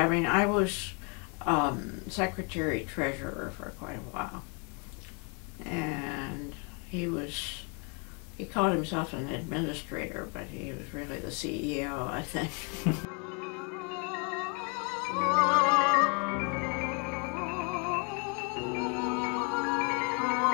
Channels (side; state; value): right; quieter; 35.5 dB